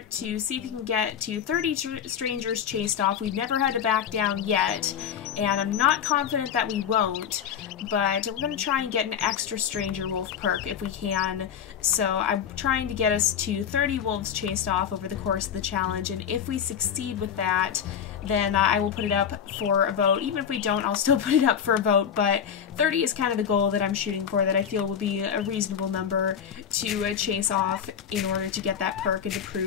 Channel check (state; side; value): quieter; right; 8.3 dB